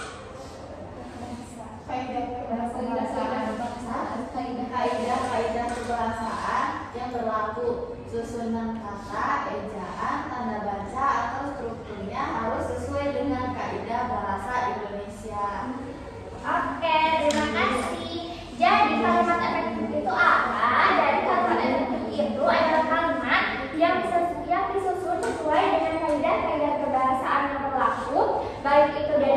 Susunan kata, ejaan, tanda baca atau strukturnya harus sesuai dengan kaidah bahasa Indonesia. Oke, terima kasih. Jadi kalimat efektif itu apa? Jadi kalimat efektif itu adalah kalimat yang disusun sesuai dengan kaidah-kaidah kebahasaan yang berlaku, baik itu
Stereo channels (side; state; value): both; identical; correlation 1.00